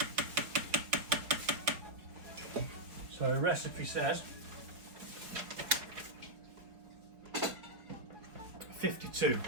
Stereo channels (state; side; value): late; left; 4.7 ms